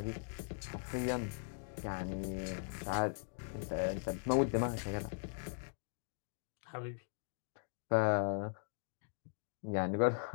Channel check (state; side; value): silent; right; digital silence